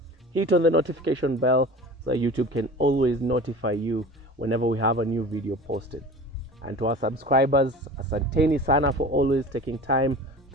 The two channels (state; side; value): normal; both; correlation 0.38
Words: hit on the notification bell so that YouTube can always notify you whenever we have a new video posted. And to our subscribers, asanteni sana for always taking time